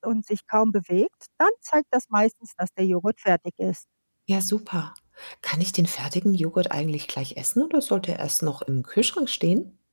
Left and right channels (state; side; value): inverted; both; correlation -1.00